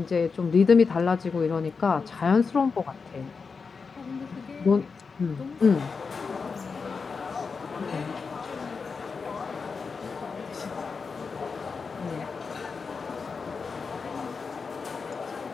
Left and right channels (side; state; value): right; quieter; 5.1 dB